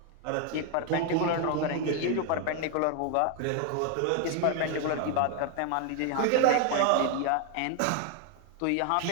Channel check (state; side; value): different; both; correlation 0.00